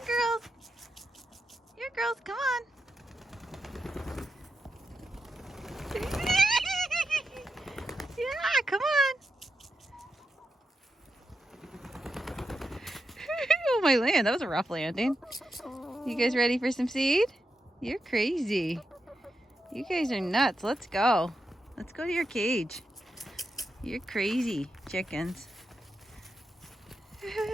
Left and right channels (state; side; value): normal; both; correlation 0.87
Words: girls. Here, girls, come on. Yeah, come on. Oh my land, that was a rough landing. You guys ready for some seed? You're crazy. You guys are nuts. Let's go. Let's go to your cage. You're crazy, chickens.